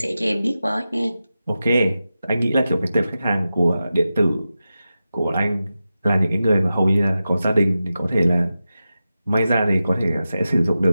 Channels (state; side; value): inverted; both; correlation -0.92